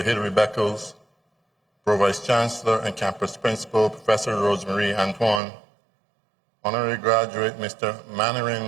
Beckles, Pro-Vice Chancellor and Campus Principal Professor Rosemary Antoine, Honorary Graduate Mr.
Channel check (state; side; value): drops out; left; at 5.4 s